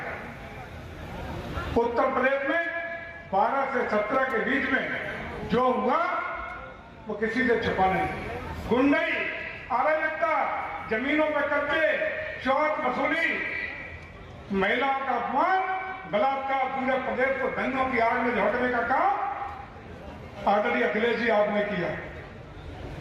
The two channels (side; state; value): both; identical; correlation 1.00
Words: उत्तर प्रदेश में 12 से 17 के बीच में जो हुआ वो किसी से छुपा नहीं। गुंडई, अराजकता, जमीनों पर कब्जे, शौक वसूली, महिलाओं का अपमान, बलात्कार, पूरे प्रदेश को दंगों की आग में झोंकने का काम आदरणीय अखिलेश जी आपने किया।